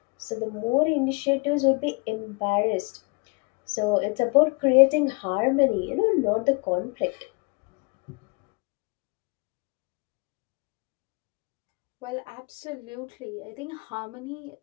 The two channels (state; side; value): quieter; right; 31.4 dB